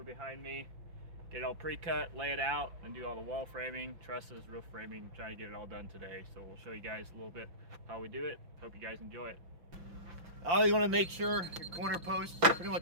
behind me, get it all pre-cut, lay it out, and do all the wall framing, trusses, roof framing, trying to get it all done today. So we'll show you guys a little bit how we do it. Hope you guys enjoy it. Always want to make sure your corner posts, pretty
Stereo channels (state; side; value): late; left; 5.8 ms